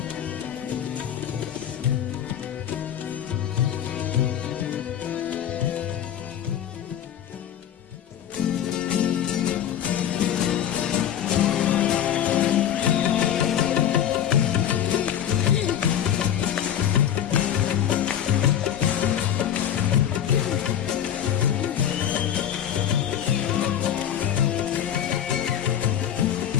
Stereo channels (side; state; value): right; quieter; 10.0 dB